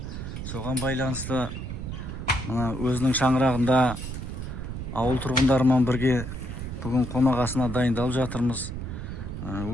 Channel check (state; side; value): noise; right; rumble, 7 dB below the sound